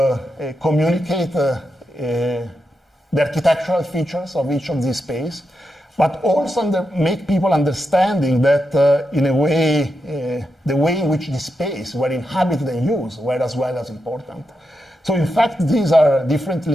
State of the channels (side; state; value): both; normal; correlation 0.86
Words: communicate the architectural features of each of these spaces, but also make people understanding that, in a way, the way in which the space were inhabited and used were as well as important. So in fact, these are